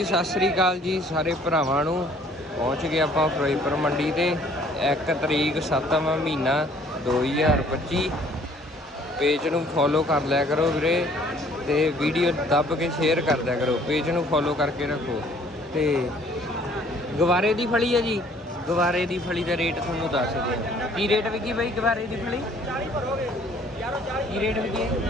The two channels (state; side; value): normal; both; correlation 0.58